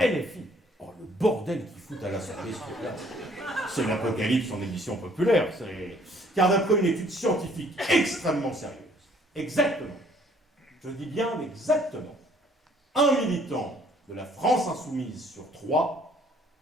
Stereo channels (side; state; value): both; normal; correlation 0.60